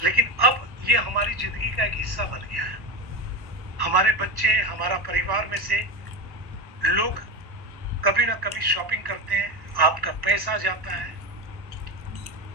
लेकिन अब ये हमारी जिंदगी का एक हिस्सा बन गया है। हमारे बच्चे, हमारा परिवार में से लोग कभी ना कभी शॉपिंग करते हैं, आपका पैसा जाता है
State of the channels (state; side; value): late; left; 1.1 ms